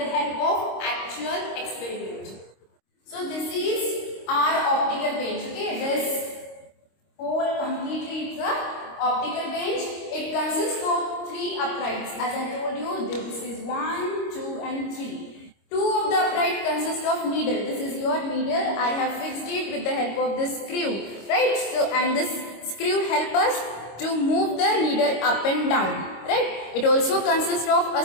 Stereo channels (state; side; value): late; right; 26 ms